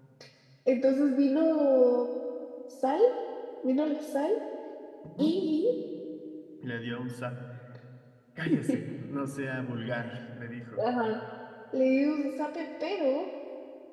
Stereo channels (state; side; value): identical; both; correlation 1.00